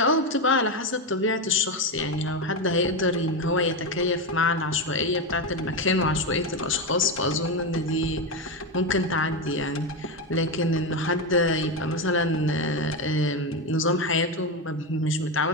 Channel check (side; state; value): both; normal; correlation 0.12